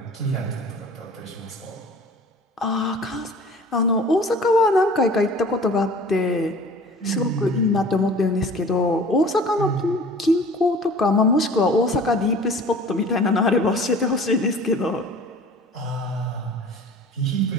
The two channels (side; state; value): both; normal; correlation 0.45